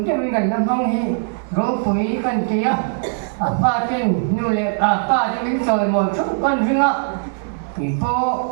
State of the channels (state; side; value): silent; left; 66 dB below the other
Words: cái mình cần làm không thì rồi phụ cần kia ba tên nu lệ ba tên mình rồi một chút con riêng á thì cô